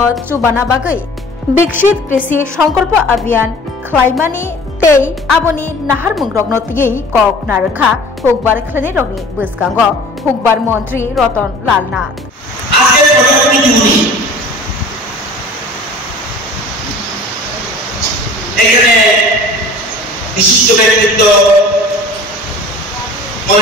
चुबाना बागै विकसित कृषि संकल्प अभियान खलायमानि तै आबोनि नाहार मुंग्रगनो तियै कक नारखा हुकबार खलायनाय रगनि बसकांगो हुकबार मंत्री रतन लाल नाथ आजके प्रधानमंत्री दिवनी এখানে বিশিষ্ট ব্যক্তিত্ব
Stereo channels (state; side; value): normal; both; correlation 0.44